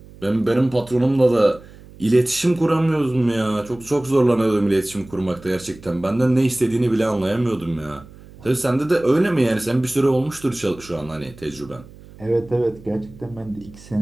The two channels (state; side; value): noise; right; hum, 21 dB below the sound